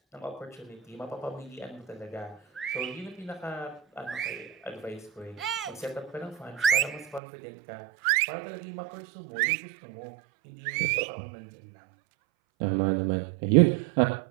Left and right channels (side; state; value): left; drops out; at 7.2 s